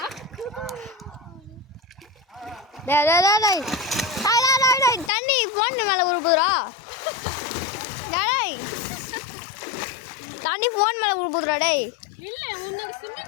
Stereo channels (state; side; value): drops out; right; at 5.1 s